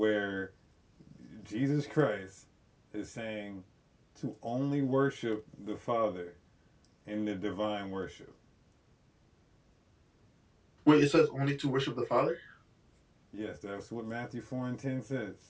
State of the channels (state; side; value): identical; both; correlation 1.00